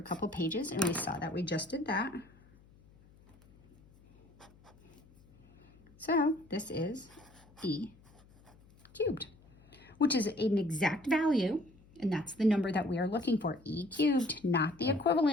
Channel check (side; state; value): left; noise; hum, 27 dB below the sound